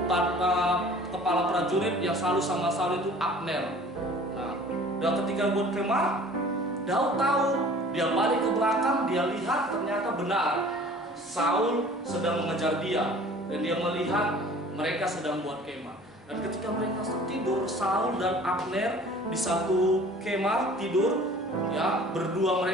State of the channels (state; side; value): normal; both; correlation 0.48